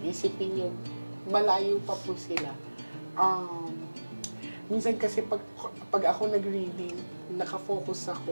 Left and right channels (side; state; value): both; inverted; correlation -1.00